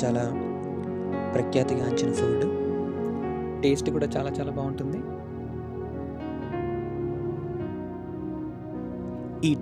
చాలా ప్రఖ్యాతిగాంచిన ఫుడ్. టేస్ట్ కూడా చాలా చాలా బాగుంటుంది. ఈ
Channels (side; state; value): both; identical; correlation 1.00